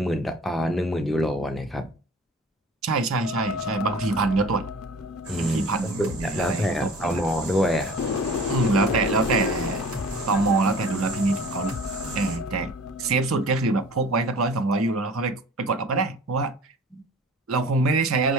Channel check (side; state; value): both; normal; correlation 0.44